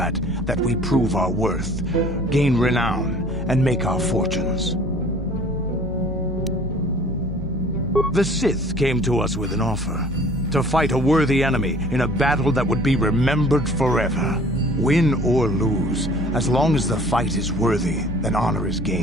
that we prove our worth, gain renown, and make our fortunes. The Sith came to us with an offer. To fight a worthy enemy in a battle that would be remembered forever. Win or lose, as long as the fight is worthy, then honor is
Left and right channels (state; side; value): normal; both; correlation 0.50